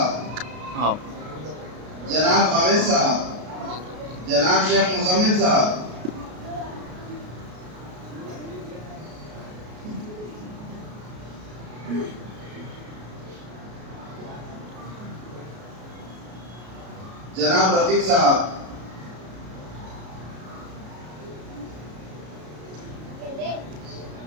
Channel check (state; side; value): late; left; 33 ms